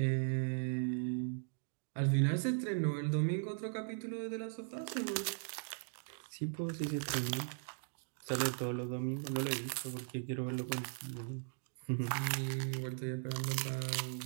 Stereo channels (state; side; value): silent; left; digital silence